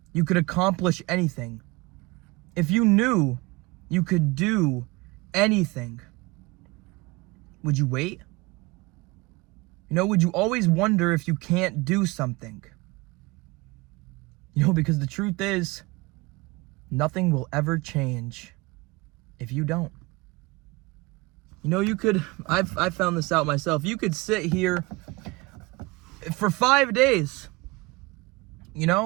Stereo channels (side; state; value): left; quieter; 23.7 dB